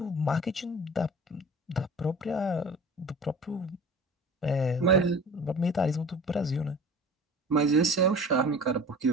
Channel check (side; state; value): both; normal; correlation 0.40